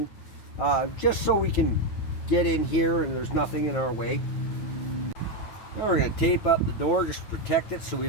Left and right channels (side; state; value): right; late; 9.1 ms